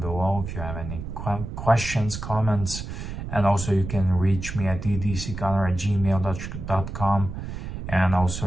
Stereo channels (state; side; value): noise; right; rumble, 7 dB below the sound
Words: below if you have any questions, comments, and also you can reach me at edcgunner@gmail.com, and also